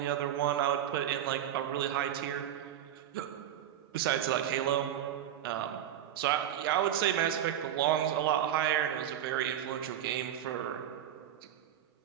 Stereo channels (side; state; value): left; quieter; 10.8 dB